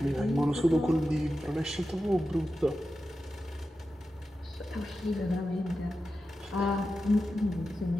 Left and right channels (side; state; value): both; normal; correlation 0.91